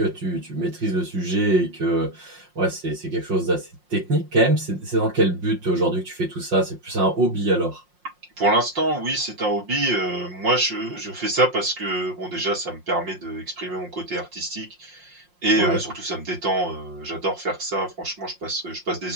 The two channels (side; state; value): left; late; 5.6 ms